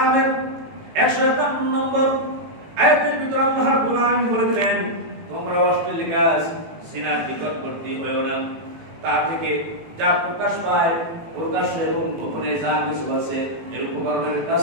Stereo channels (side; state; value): left; late; 18 ms